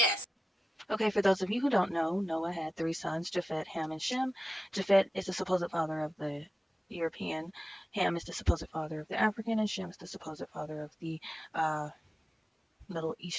Okay, for those of you who don't know, Noah had 3 sons, Japhet, Ham, and Shem. Japhet is the supposed father of the European, Ham is the supposed father of the African, and Shem is the supposed father of the Middle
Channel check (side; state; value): both; normal; correlation 0.94